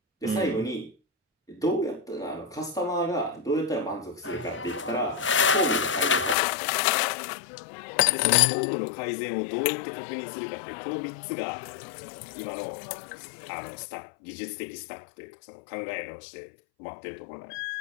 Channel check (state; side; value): drops out; right; at 6.4 s